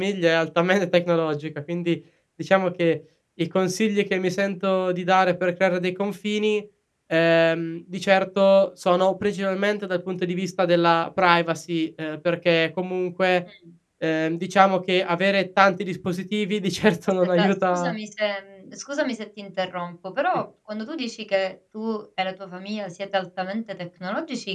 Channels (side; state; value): both; identical; correlation 1.00